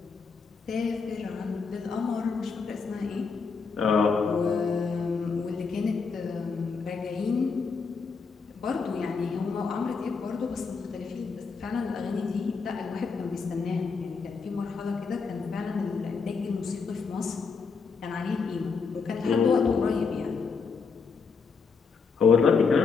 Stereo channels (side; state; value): right; quieter; 5.1 dB